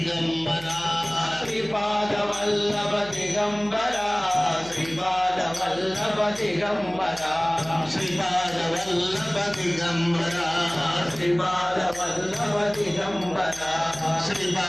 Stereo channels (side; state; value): right; noise; hum, 19 dB below the sound